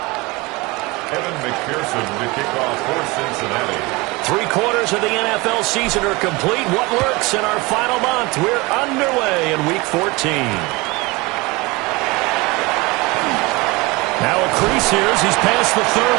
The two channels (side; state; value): left; quieter; 24.0 dB